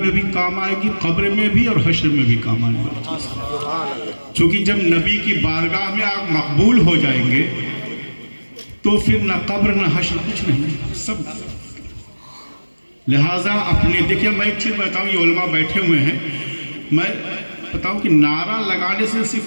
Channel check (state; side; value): inverted; both; correlation -1.00